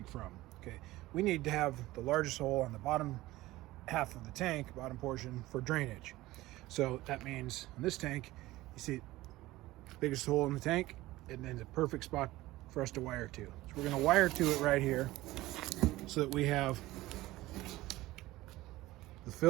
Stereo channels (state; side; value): quieter; left; 17.8 dB